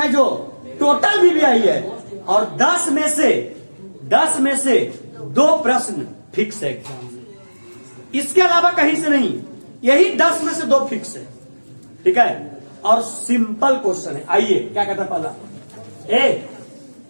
जो टोटल बीबीआई है, और 10 में से 2 प्रश्न फिक्स है एग्जाम में, इसके अलावा कहीं से नहीं, यही 10 में से 2 फिक्स है, ठीक है। और सिंपल क्वेश्चन है। आइए क्या कहता है पहला,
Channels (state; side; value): inverted; both; correlation -1.00